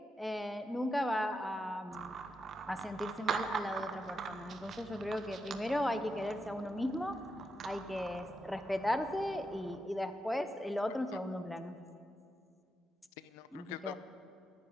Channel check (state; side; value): normal; both; correlation 0.85